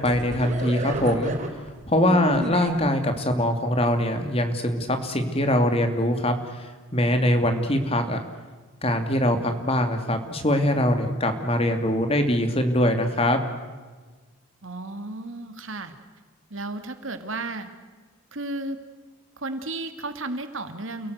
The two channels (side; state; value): both; normal; correlation 0.54